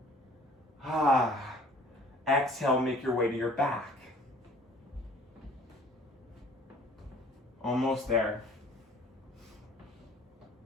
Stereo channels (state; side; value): normal; both; correlation 0.52